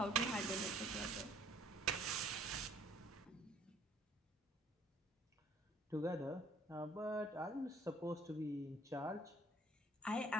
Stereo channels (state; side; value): normal; both; correlation 0.58